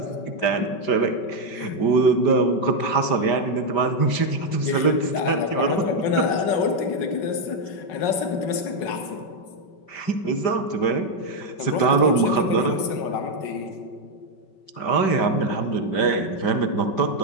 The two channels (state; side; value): late; right; 5.1 ms